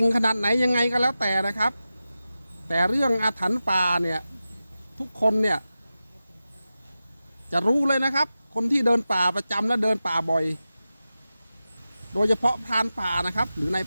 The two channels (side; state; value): both; inverted; correlation -0.93